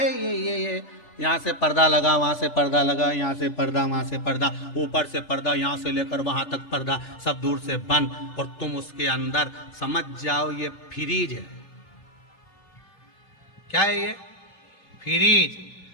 ये यहाँ से पर्दा लगा, वहां से पर्दा लगा, यहाँ से पर्दा, वहां से पर्दा, ऊपर से पर्दा, यहाँ से लेकर वहां तक पर्दा, सब दूर से बंद, और तुम उसके अंदर समझ जाओ ये फ्रीज है। क्या है ये? फ्रीज।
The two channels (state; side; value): late; right; 3.3 ms